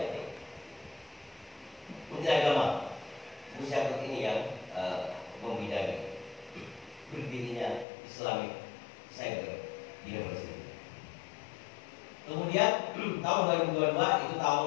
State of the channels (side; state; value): right; drops out; at 7.9 s